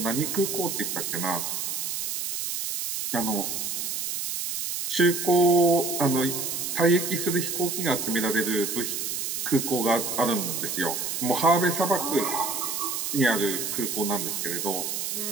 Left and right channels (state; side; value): noise; right; hiss, 3 dB below the sound